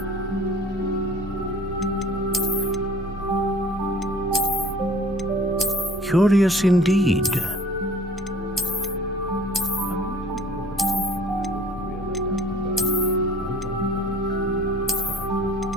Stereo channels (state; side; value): normal; both; correlation 0.49